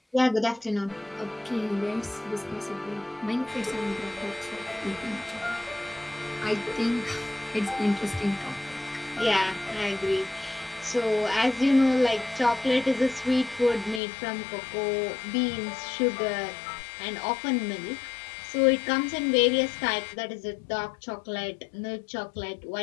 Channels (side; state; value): right; drops out; at 14.0 s